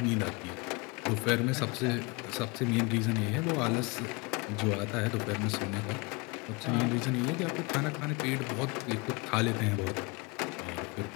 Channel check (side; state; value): right; quieter; 28.0 dB